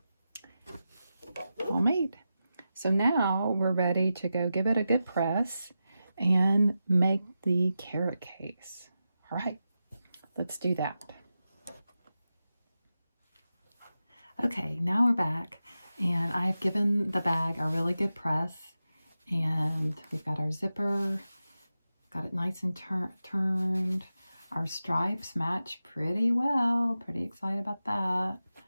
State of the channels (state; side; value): inverted; both; correlation -0.91